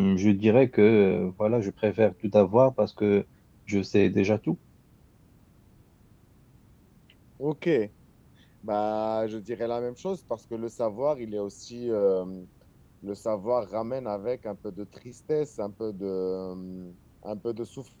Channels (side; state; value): both; identical; correlation 1.00